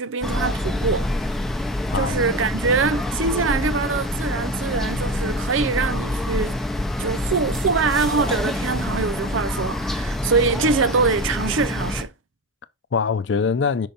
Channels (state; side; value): normal; both; correlation 0.23